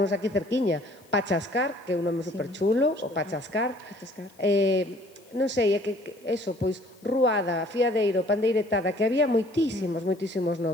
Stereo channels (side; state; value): left; noise; hiss, 29 dB below the sound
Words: aquí cerquiña, Pachascar, que é un nome superchulo, o Pachascar. Non sei, é que eso, pois ruada, fiadeiro, pandeiretada, que había moitísimos